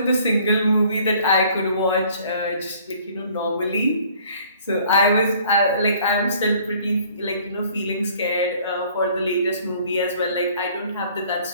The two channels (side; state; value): both; inverted; correlation -0.56